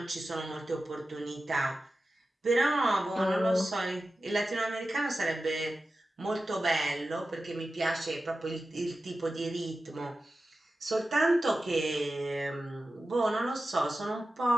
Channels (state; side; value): normal; both; correlation 0.93